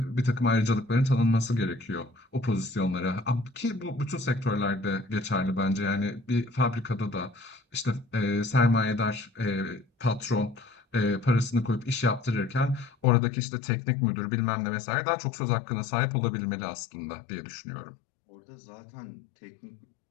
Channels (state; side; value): drops out; right; at 13.1 s